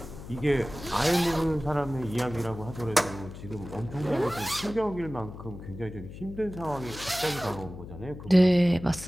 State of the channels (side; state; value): left; noise; hum, 13 dB below the sound